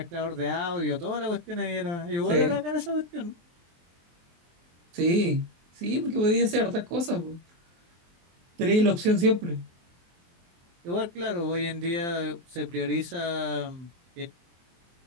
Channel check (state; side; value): late; left; 23 ms